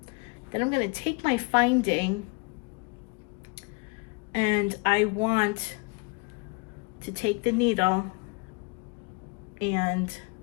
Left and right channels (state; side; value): quieter; right; 30.4 dB